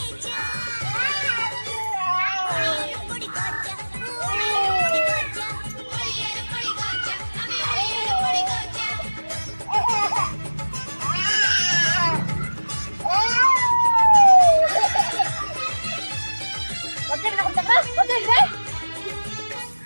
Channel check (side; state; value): both; inverted; correlation -1.00